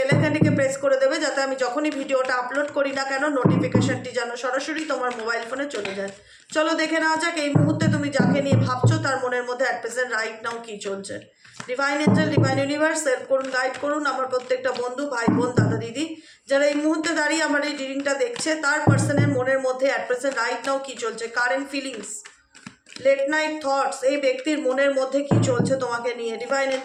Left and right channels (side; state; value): both; identical; correlation 1.00